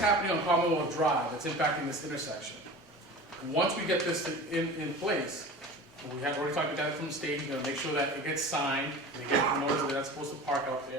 on Commonwealth Drive that's impacting this intersection? Once we get this in place, we have already talked about that from the state, we're gonna make sure that it gets signed, they get the notice that they're not supposed to park out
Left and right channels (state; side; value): normal; both; correlation 0.36